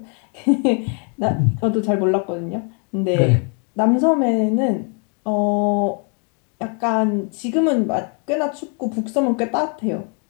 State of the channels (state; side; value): quieter; right; 38.8 dB